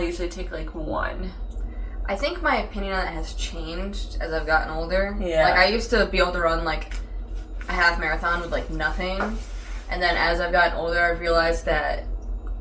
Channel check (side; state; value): both; identical; correlation 1.00